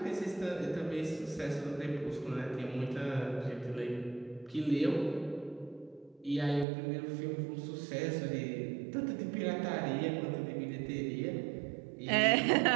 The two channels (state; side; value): drops out; left; at 6.7 s